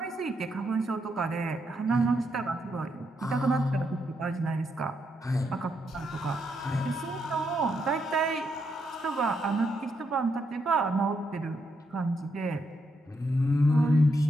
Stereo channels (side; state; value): both; normal; correlation 0.79